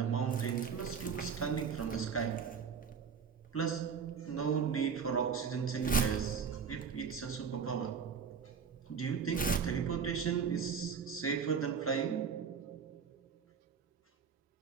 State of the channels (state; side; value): quieter; left; 6.5 dB